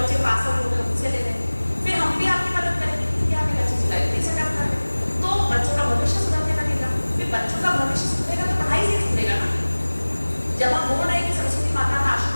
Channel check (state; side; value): inverted; both; correlation -1.00